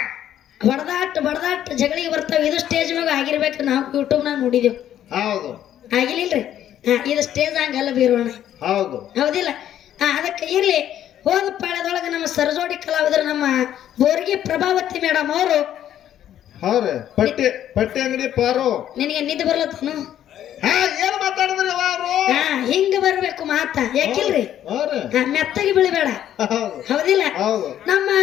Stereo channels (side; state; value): right; quieter; 11.1 dB